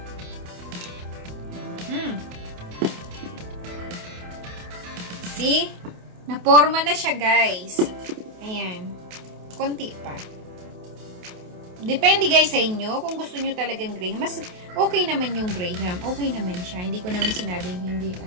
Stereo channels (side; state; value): left; late; 28 ms